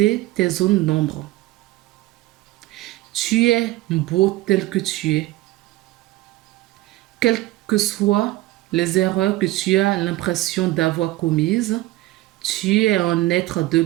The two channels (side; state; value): left; quieter; 17.5 dB